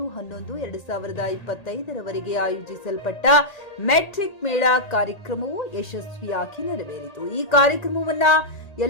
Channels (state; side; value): late; right; 1.8 ms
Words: ರವರೆಗೆ ಆಯೋಜಿಸಲ್ಪಟ್ಟ ಮೆಟ್ರಿಕ್ ಮೇಳ ಕಾರ್ಯಕ್ರಮವು ಯಶಸ್ವಿಯಾಗಿ ನೆರವೇರಿತು. ಈ ಕಾರ್ಯಕ್ರಮವನ್ನು